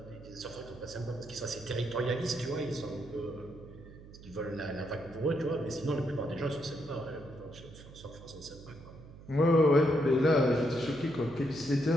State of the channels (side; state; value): right; noise; hum, 18 dB below the sound